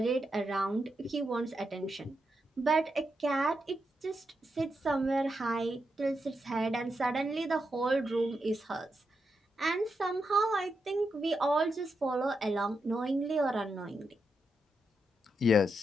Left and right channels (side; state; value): both; normal; correlation 0.84